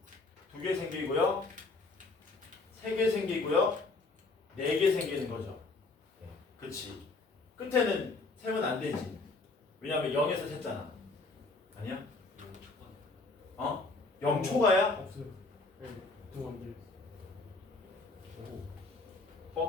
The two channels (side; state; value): right; quieter; 3.5 dB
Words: 2개 생기고요, 3개 생기고요, 4개 생기는 거죠. 그치? 끝에는 세면 안 되지. 왜냐면 0에서 셌잖아. 아니야? 0초가야? 없어요. 네, 두 원들.